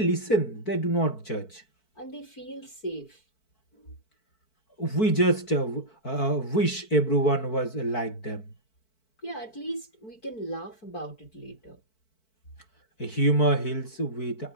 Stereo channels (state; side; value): late; right; 4.5 ms